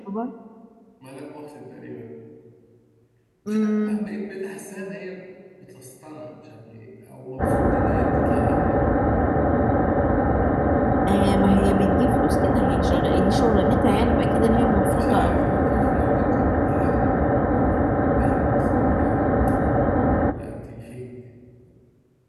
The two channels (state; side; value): identical; both; correlation 1.00